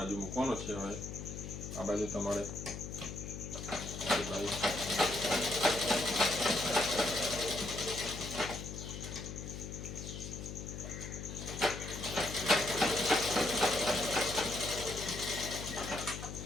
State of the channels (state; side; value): noise; left; hum, 8 dB below the sound